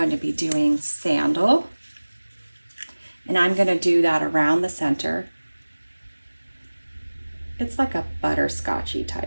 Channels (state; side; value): inverted; both; correlation -1.00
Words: to be doing Sandal, and I'm going to do that around the center. It's like a butterscotchy